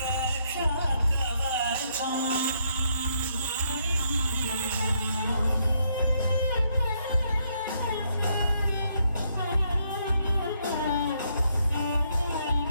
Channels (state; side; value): inverted; both; correlation -0.74